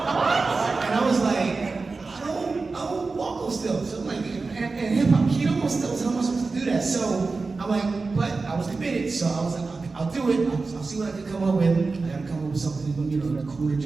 was like, I don't walk on stilts. So I'm like, and hip hop keto on stilts, how am I supposed to do that? So I'm like, but I was committed, so I was like, I'll do it. I'll see what I can come up with. I gotta come up with something, you know, cool to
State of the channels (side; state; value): left; quieter; 4.0 dB